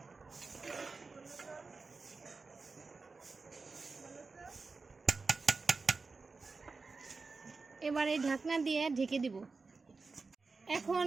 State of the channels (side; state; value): left; quieter; 4.2 dB